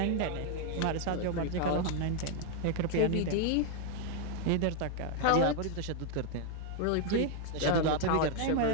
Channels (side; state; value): both; different; correlation 0.00